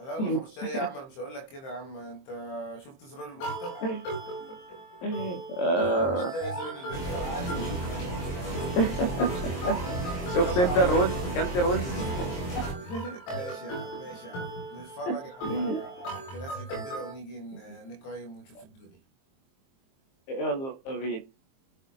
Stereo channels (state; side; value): late; right; 23 ms